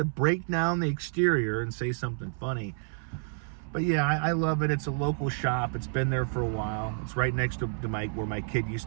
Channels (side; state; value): left; silent; 58 dB below the other